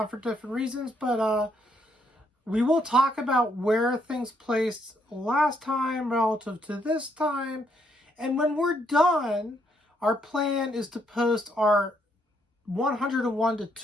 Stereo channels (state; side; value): normal; both; correlation 0.73